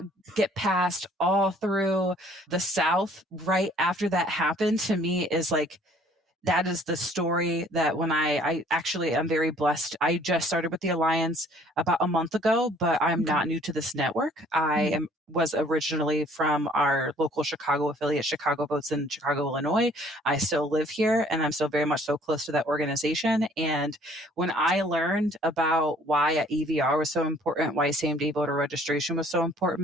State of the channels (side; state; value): both; normal; correlation 0.57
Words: get passed all through the South right after that happened, to me is like that is the story that when I actually am very blessed. I just started with the Alliance about a month ago, but I'm Okay. not new to this network. I Mhm. am was originally from our local Chicago affiliate, Chicago Votes in Chicago, Illinois. I still live here and I'm still very much so close to that organization. And when I learned about why a EVR was so important, why same day voter registration was so